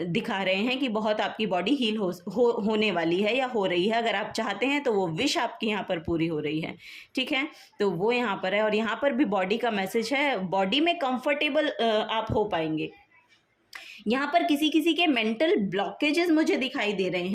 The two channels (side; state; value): both; identical; correlation 1.00